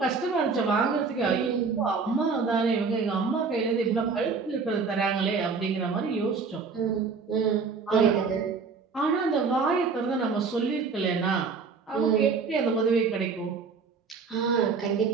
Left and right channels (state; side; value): quieter; left; 5.0 dB